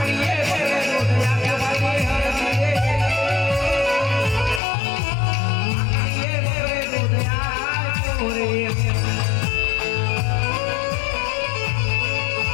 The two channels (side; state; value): right; drops out; at 4.6 s